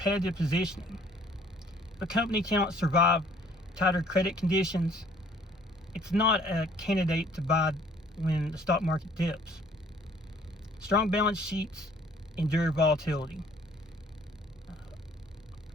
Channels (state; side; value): normal; both; correlation 0.58